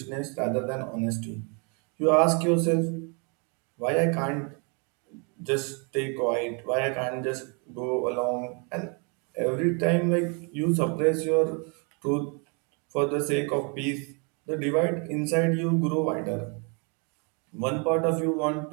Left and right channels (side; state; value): left; quieter; 35.1 dB